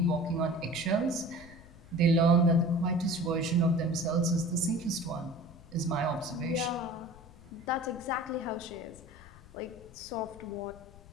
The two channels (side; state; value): left; noise; rumble, 20 dB below the sound